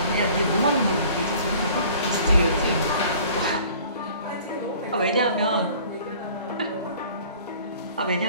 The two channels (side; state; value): both; inverted; correlation -0.50